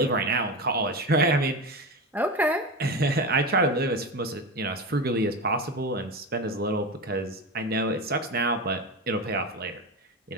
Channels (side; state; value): both; normal; correlation 0.21